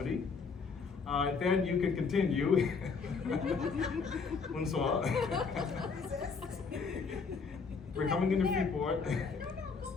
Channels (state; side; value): quieter; right; 5.1 dB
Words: Then you can continue. Bonsoir. We're coming into Freeport.